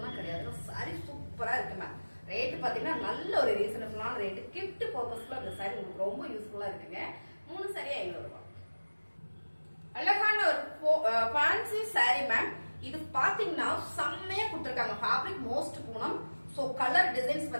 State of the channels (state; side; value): inverted; both; correlation -1.00